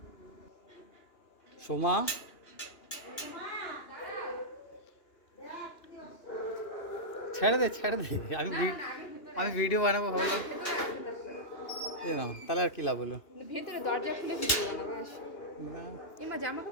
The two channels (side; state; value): right; late; 2.9 ms